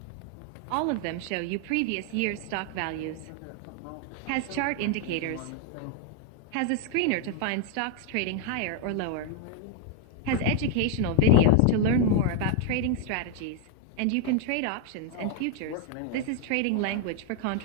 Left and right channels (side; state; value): both; different; correlation 0.00